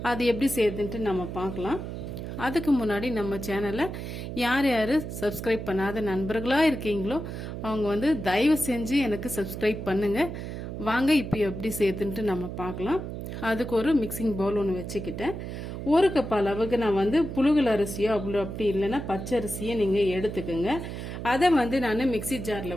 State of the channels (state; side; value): noise; right; hum, 7 dB below the sound